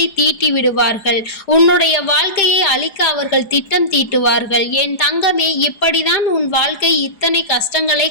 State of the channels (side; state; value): right; late; 4.8 ms